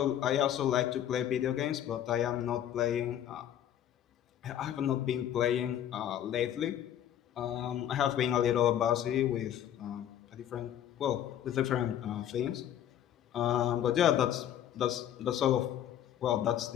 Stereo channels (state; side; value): quieter; right; 10.7 dB